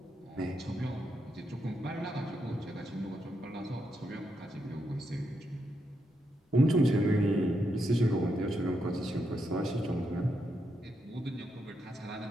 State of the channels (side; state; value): both; normal; correlation 0.82